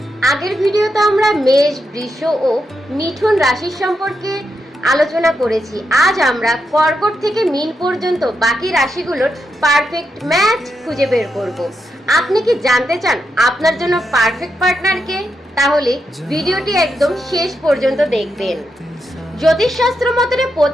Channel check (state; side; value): normal; both; correlation 0.84